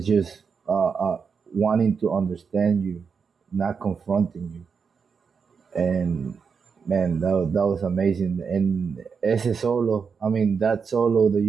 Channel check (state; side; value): quieter; left; 5.9 dB